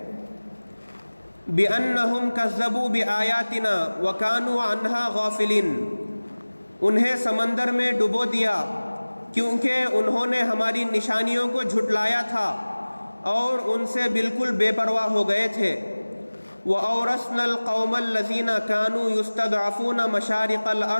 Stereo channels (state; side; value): inverted; both; correlation -1.00